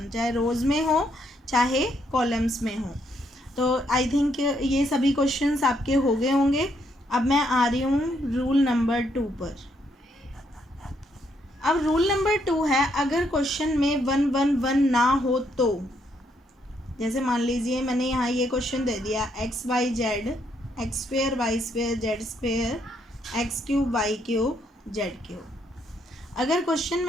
चाहे रोज़ में हो चाहे कॉलम्स में हो, तो आई थिंक ये सभी क्वेश्चंस आपके हो गए होंगे। अब मैं आ रही हूँ रूल नंबर 2 पर। अब रूल नंबर 2 है, अगर क्वेश्चन में 1 1 1 ना हो तो, जैसे मान लीजिए मैंने यहाँ ये क्वेश्चन दे दिया x y z, x square y square z square, x cube y cube z cube. अगर क्वेश्चन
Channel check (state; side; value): normal; both; correlation 0.74